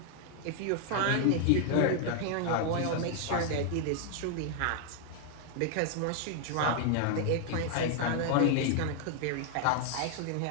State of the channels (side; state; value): both; different; correlation 0.00